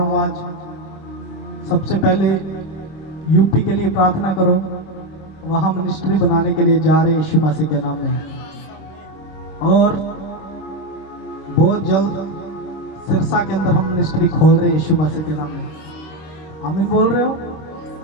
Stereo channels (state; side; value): late; right; 26 ms